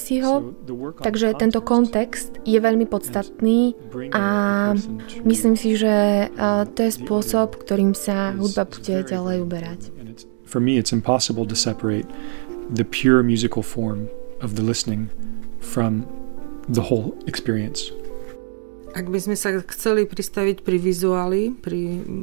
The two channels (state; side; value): silent; left; digital silence